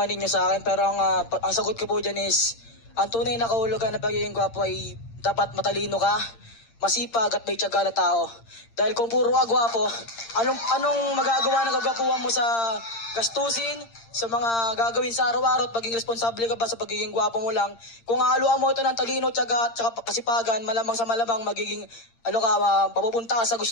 ninyo sa akin, pero ang sagot ko po dyan is, ang tunay na kahulugan ng pagiging gwapo ay dapat matalino ka, masipag at may tiyaga na tao. Dahil kung puro ka gwapo, anong magagawa ng kagwapuhan mo sa gastusin, sa mga gagawin sa araw-araw at maging responsable ka ba sa pagiging gwapo mo lang? Kung haluan mo ito ng talino, tiyaga at kasipagan, malamang sa malamang magiging papupunta ka sa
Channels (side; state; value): right; late; 8.7 ms